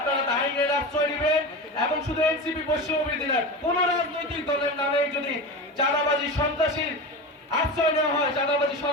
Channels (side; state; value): both; normal; correlation 0.25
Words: আইনের আশ্রয় দিবেন এবং শুধু এনসিপি বৈষম্য বিরোধী না, কোন রাজনৈতিক দলের নামে যদি চাঁদাবাজি সন্ত্রাসীর আশ্রয় নেওয়া হয়, চাঁদাবাজি